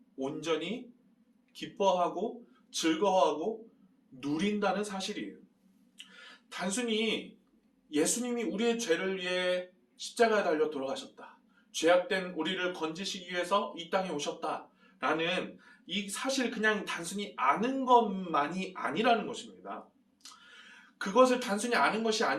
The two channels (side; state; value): both; identical; correlation 1.00